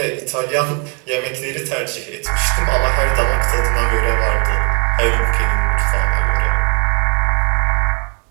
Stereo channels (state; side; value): quieter; left; 35.5 dB